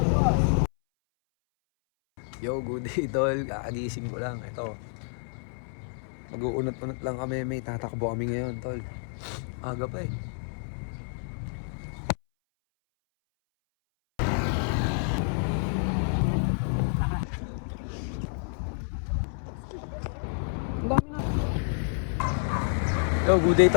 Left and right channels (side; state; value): right; silent; 59 dB below the other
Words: Yo, good day tol. Kakagising ko lang. Ito. Mag-uunot-unot lang kami. May tatakbo kami ngayon tol. Aga pa eh. Yo, good day